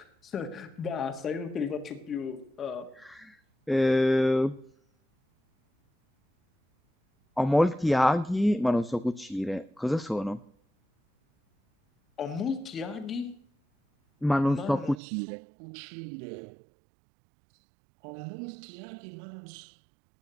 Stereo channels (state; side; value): drops out; left; at 15.0 s